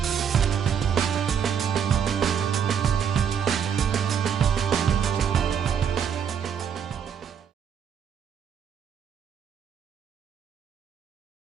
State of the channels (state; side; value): quieter; left; 7.7 dB